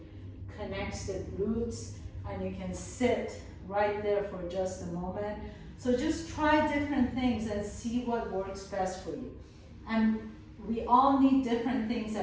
connects the glutes, and you can sit right there for just a moment. So just try different things and see what works best for you. And we all need different things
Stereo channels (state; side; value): identical; both; correlation 1.00